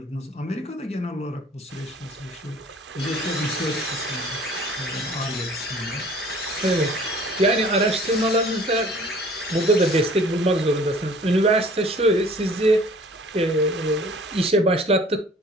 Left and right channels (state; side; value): normal; both; correlation 0.50